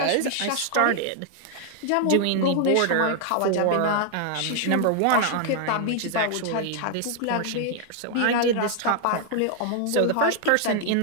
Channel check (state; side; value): different; both; correlation 0.00